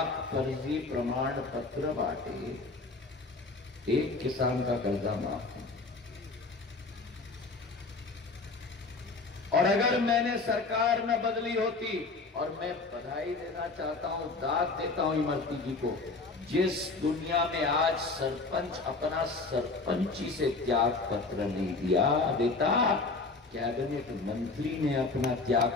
फर्जी प्रमाण पत्र बांटे, एक किसान का कर्जा माफ। और अगर मैंने सरकार न बदली होती, और मैं बधाई देना चाहता हूं, दाद देता हूं इमरती जी को, जिस दुनिया में आज सरपंच अपना सरपंची से त्याग पत्र नहीं दिया देता, कैबिनेट मंत्री ने अपना त्याग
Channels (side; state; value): right; quieter; 3.8 dB